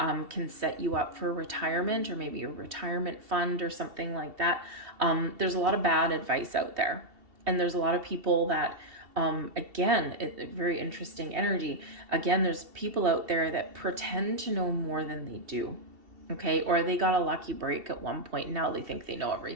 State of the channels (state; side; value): late; left; 2.7 ms